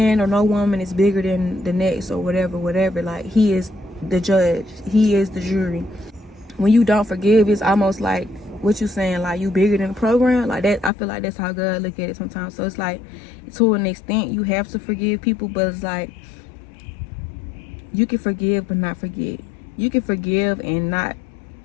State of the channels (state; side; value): drops out; right; at 10.9 s